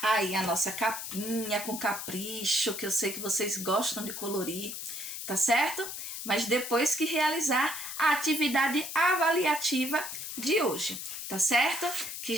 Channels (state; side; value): noise; left; hiss, 7 dB below the sound